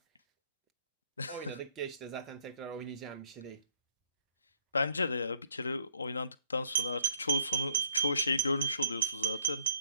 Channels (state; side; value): inverted; both; correlation -0.62